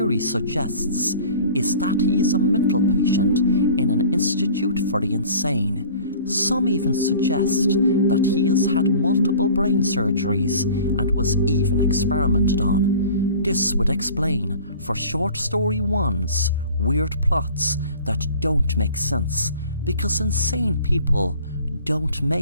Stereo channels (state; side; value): inverted; both; correlation -0.45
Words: suggests is that he is a mental patient in an institute for the insane. Some even suggest that he has had multiple brain surgeries and was even experimented on. This would explain for Short Story 1's weird plots that don't make sense, because insane people don't